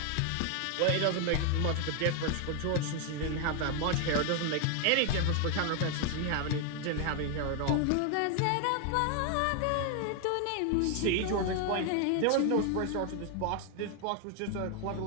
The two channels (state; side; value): different; both; correlation 0.01